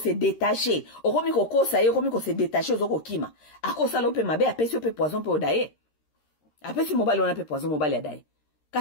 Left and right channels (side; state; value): right; late; 13 ms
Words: détacher, okomi ko kosa ye, okomi ko se détacher ozoko kima. Akosa lope mabe apesi ope poison pe odaye. Apesi mobali wana pe poison mobali adaye.